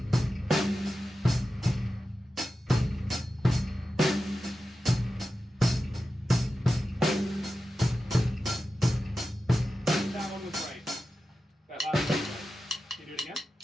That one was right. That last one was right. Can you do it again?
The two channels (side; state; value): both; normal; correlation 0.92